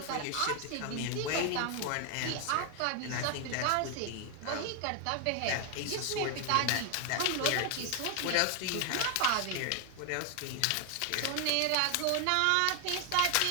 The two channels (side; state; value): both; different; correlation 0.00